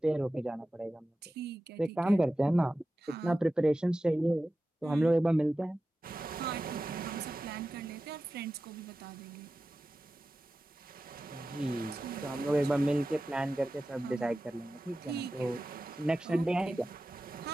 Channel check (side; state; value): both; normal; correlation 0.94